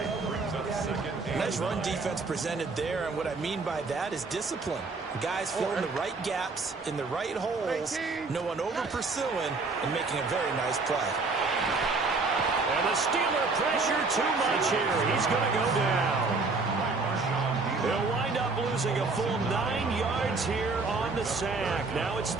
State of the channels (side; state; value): left; quieter; 3.9 dB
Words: Nice run defense presented there, and what I mean by that is discipline. Guys filling the right gaps in the right holes, no one over-pursuing, and making a very nice play. And the Steeler pressure too much here. He's going to go down. He'll wind up losing a full 9 yards here on the sack. Now it's